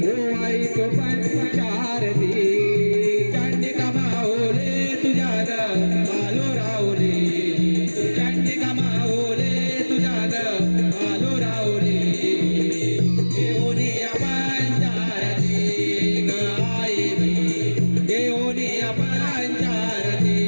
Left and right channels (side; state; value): both; inverted; correlation -1.00